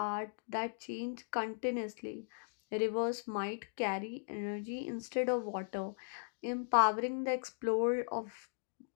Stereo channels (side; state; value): right; silent; digital silence